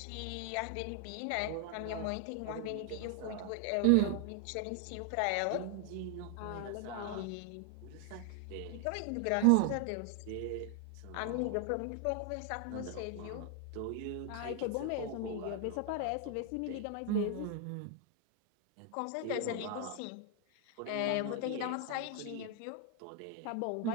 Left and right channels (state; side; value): different; both; correlation 0.00